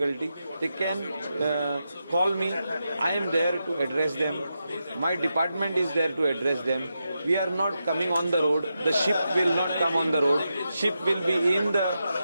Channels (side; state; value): both; inverted; correlation -0.87